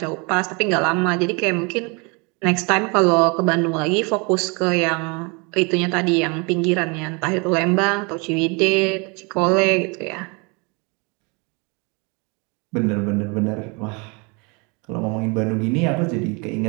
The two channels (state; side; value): quieter; left; 30.9 dB